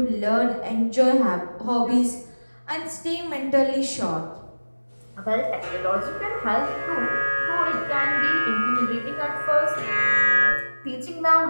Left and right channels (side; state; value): both; inverted; correlation -1.00